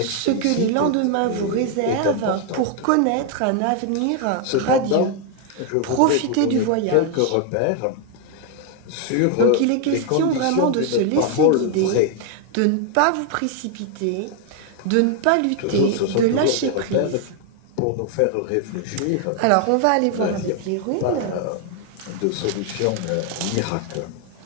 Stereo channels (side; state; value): both; different; correlation 0.00